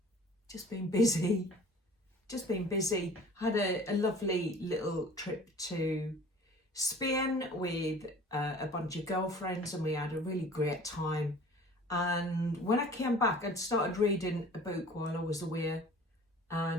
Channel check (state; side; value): normal; both; correlation 0.46